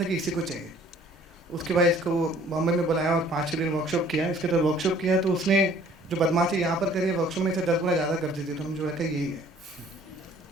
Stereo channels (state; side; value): normal; both; correlation 0.55